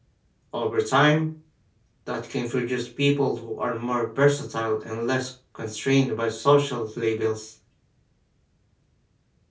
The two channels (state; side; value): identical; both; correlation 1.00